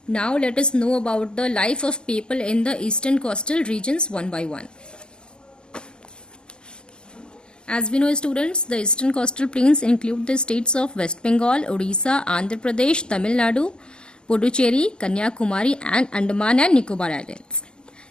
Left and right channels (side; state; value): right; late; 0.047 ms